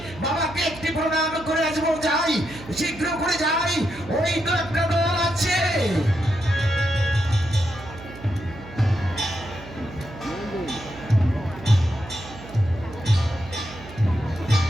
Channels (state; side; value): noise; right; hum, 16 dB below the sound